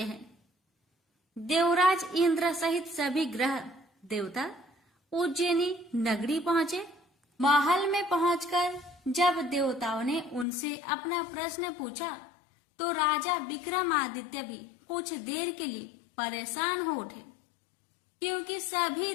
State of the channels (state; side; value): drops out; right; at 10.5 s